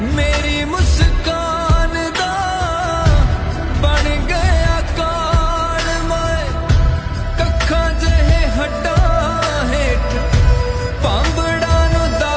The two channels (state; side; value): identical; both; correlation 1.00